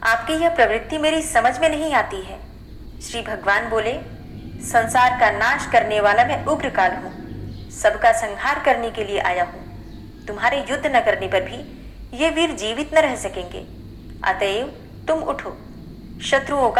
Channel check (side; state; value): both; identical; correlation 1.00